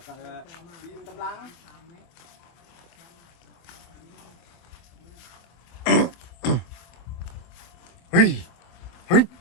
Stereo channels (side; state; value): right; late; 24 ms